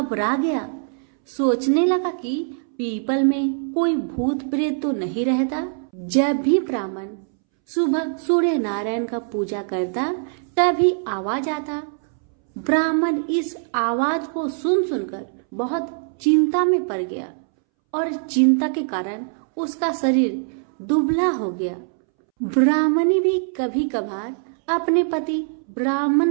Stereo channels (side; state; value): left; silent; 64 dB below the other